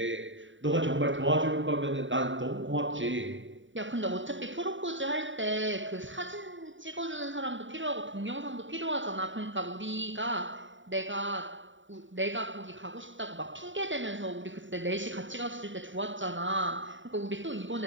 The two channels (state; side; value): late; left; 0.55 ms